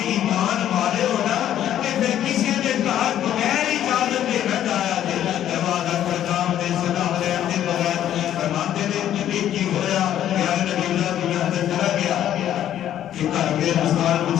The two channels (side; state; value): right; quieter; 11.2 dB